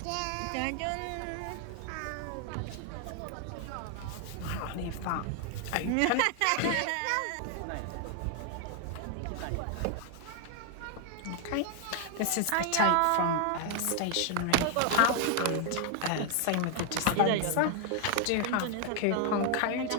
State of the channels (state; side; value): different; both; correlation 0.00